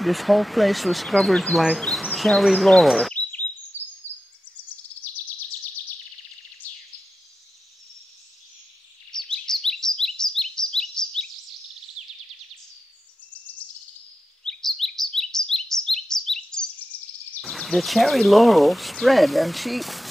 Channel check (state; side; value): normal; both; correlation 0.91